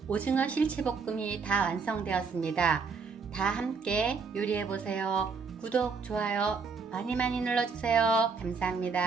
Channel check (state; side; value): quieter; left; 5.1 dB